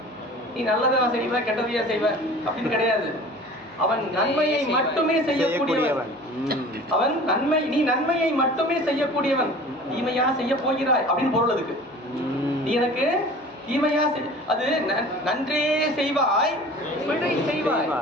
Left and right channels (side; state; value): right; noise; hum, 29 dB below the sound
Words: நீ நல்லதா செய்வ கெட்டதையா செய்வ அப்படின்னு கிடையாது. அவன் நன்மையை மட்டுமே செய்யக்கூடியவன். அவன் நன்மை, நீ நன்மையை மட்டுமே செய்யக்கூடியவன். தீமையா செய்ய போகிறாய் அப்படின்னு பொருள் அதுக்கு. நீ எனக்கு தீமையா அது நன்றே செய்வாய் பிழை செய்வாய்.